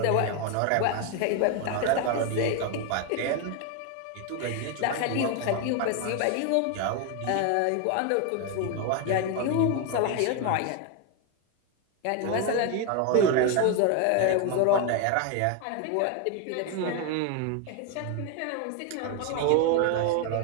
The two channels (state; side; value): different; both; correlation 0.01